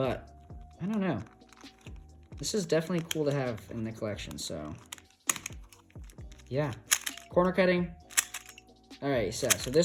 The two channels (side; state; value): both; identical; correlation 1.00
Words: I don't know. This is definitely cool to have in the collection, so yeah. Corner cutting. All right, so